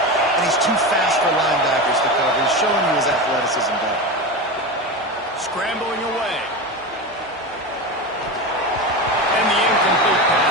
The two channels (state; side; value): normal; both; correlation 0.22